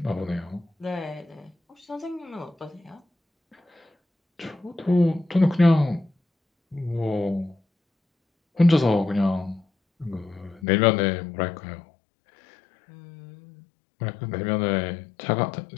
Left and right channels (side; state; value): right; drops out; at 10.7 s